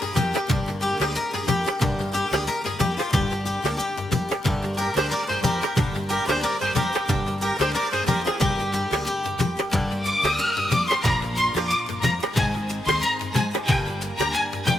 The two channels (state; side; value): normal; both; correlation 0.84